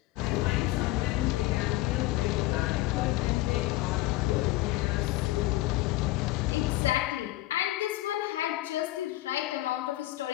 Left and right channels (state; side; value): quieter; right; 17.8 dB